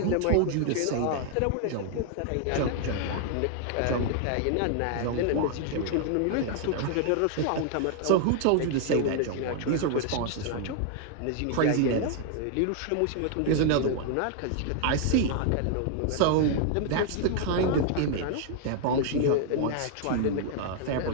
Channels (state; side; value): different; both; correlation 0.00